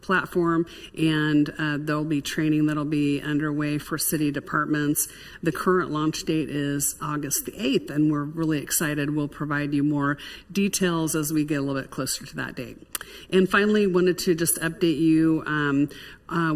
platform, and there'll be training that'll be underway for city departments. The current launch date is August the 8th, and we're really excited. We'll provide you more details as we get a little bit closer to that date. And finally, wanted to just update you.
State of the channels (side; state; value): both; identical; correlation 1.00